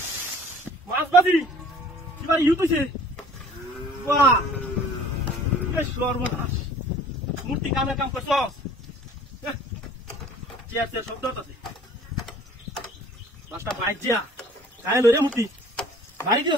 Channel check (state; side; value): normal; both; correlation 0.50